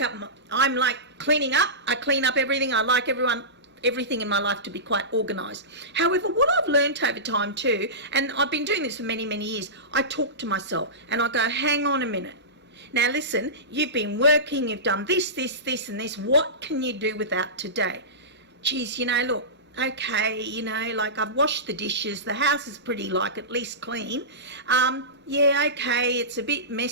up. I'm like cleaning up. I clean up everything. I like everything in my life to be quite organised. However, what I've learned over time too, and I've been doing this for many, many years, I talk to myself and I go, hang on a minute. Now listen, you've been working, you've done this, and this. What can you do without today? Geez, look, okay, like I've washed the dishes, the house is pretty at least clean. Yeah, okay, it's a bit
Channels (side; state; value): both; normal; correlation -0.19